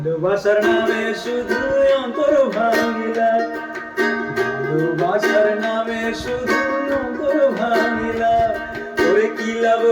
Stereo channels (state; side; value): identical; both; correlation 1.00